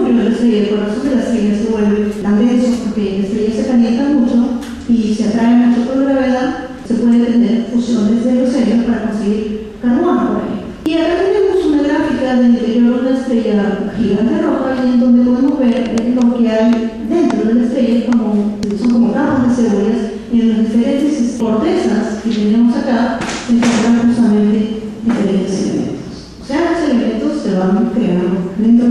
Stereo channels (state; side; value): identical; both; correlation 1.00